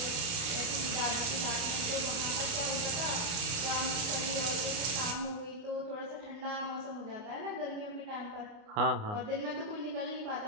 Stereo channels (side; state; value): left; late; 29 ms